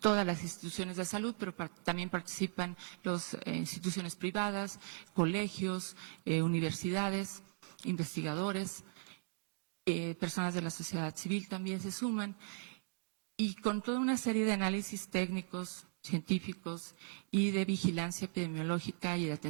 las instituciones de salud, pero también participan las instituciones privadas, colegios, universidades, investigadores, personas de la sociedad civil también se suman, y con toda una serie de análisis técnicos, científicos y de vigilancia epidemiológica y de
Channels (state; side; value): silent; left; digital silence